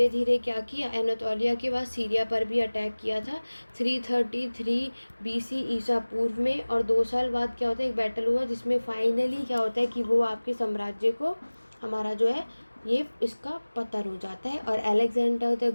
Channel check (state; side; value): inverted; both; correlation -1.00